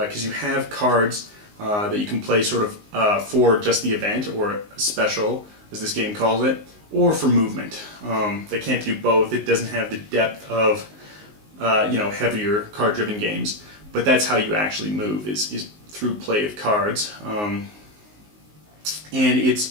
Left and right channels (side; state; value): left; late; 19 ms